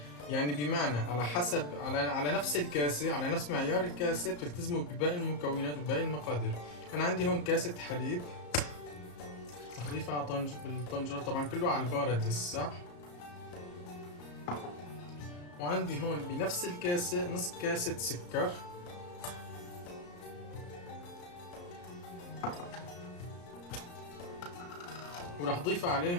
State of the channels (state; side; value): late; right; 34 ms